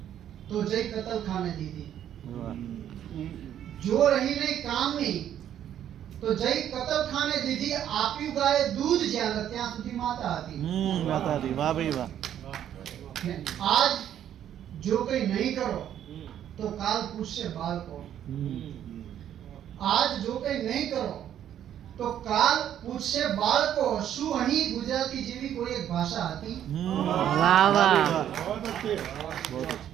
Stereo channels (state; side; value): quieter; left; 10.5 dB